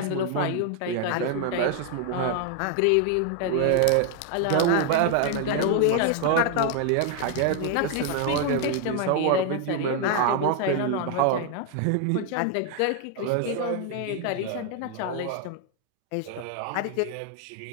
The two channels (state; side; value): different; both; correlation 0.00